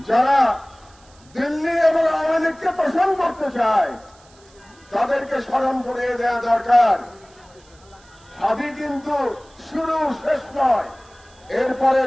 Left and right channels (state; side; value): noise; right; hiss, 29 dB below the sound